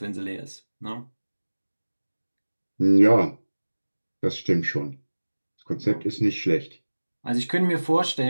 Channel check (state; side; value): inverted; both; correlation -1.00